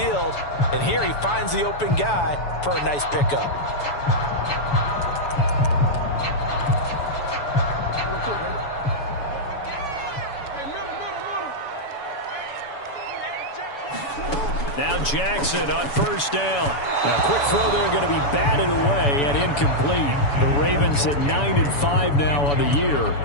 And here he finds the open guy for a nice pickup. Now Jackson on first down. A quick throw there going to be batted away and incomplete. The Ravens at 9-5 now on the year.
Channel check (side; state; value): right; late; 7.0 ms